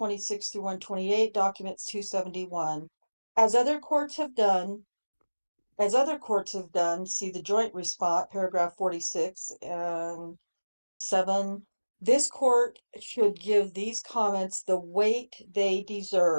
through 128, documents 271. As other courts have done, see the joint response, paragraph 46 and 7, This court should give these comments the weight they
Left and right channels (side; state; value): both; inverted; correlation -1.00